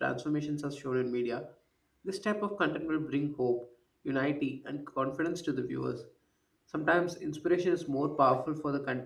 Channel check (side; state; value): both; identical; correlation 1.00